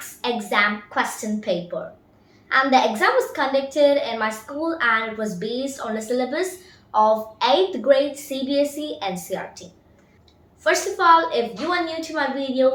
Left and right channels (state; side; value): identical; both; correlation 1.00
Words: exam question paper. And the exam was conducted in my school and it was based on the syllabus of 8th grade CBSE NCERT. First of all, if you are new to my